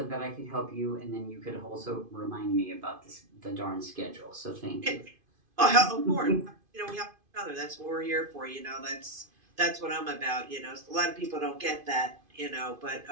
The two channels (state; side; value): late; left; 2.5 ms